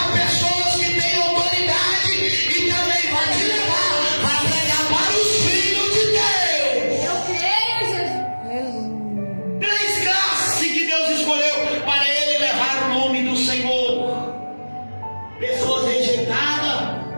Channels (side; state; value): both; inverted; correlation -1.00